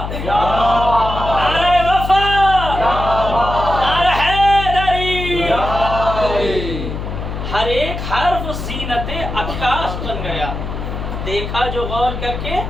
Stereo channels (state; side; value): noise; left; hum, 6 dB below the sound